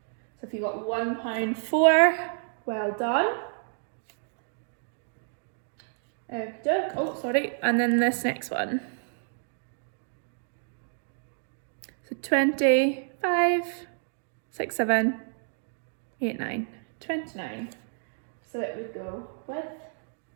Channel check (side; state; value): left; silent; 58 dB below the other